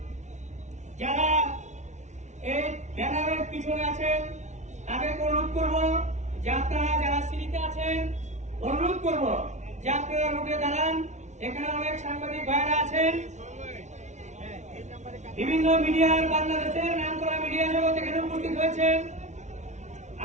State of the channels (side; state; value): left; late; 0.33 ms